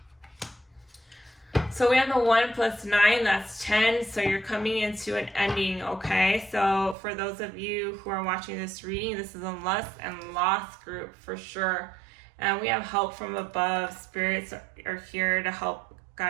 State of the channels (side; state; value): left; drops out; at 7.0 s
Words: So we have the 1 + 9, that's 10. So you're coming into an ending, okay? So for those of you who are watching this reading, this is a lust and loss group for sure. And we have help from above. Spirits are here to help